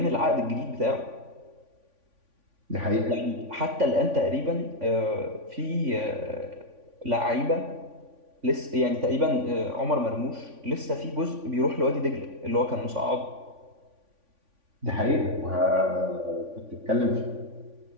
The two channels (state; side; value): late; left; 3.5 ms